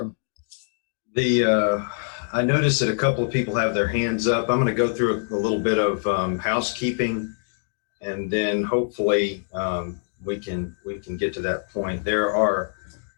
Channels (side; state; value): right; silent; digital silence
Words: I noticed that a couple of people have their hands up. I'm going to go through a little bit of housekeeping, and then hopefully we can get to that point. There are